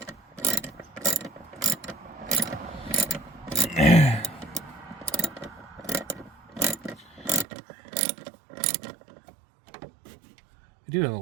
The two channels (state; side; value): drops out; left; at 7.5 s